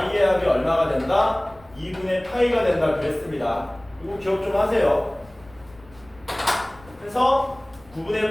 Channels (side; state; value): left; noise; rumble, 25 dB below the sound